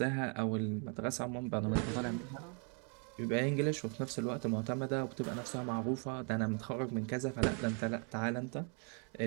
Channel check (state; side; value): quieter; left; 38.8 dB